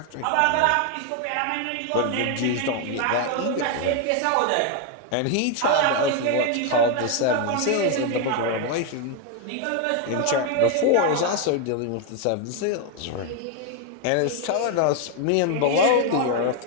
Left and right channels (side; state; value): both; different; correlation 0.01